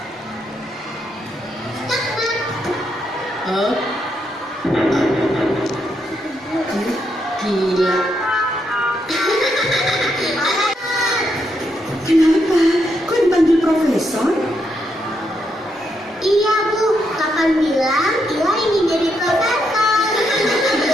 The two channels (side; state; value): both; normal; correlation 0.79